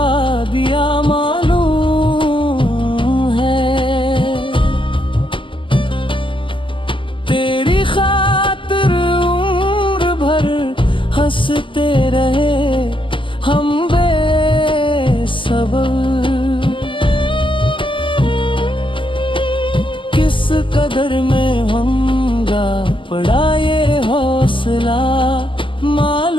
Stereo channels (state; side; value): late; right; 0.25 ms